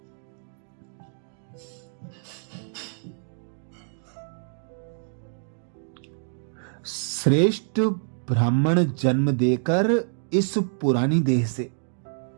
श्रेष्ठ ब्राह्मण जन्म देकर इस पुरानी देह से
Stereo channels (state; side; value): silent; left; digital silence